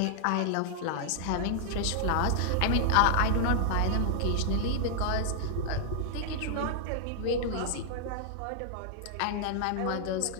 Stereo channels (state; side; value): different; both; correlation -0.01